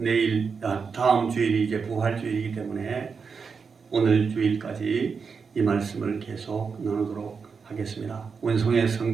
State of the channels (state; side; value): quieter; left; 5.5 dB